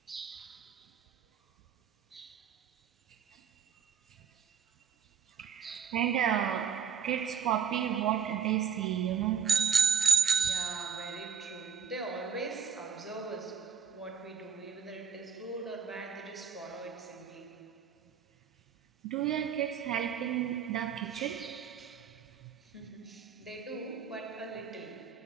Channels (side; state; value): left; quieter; 6.7 dB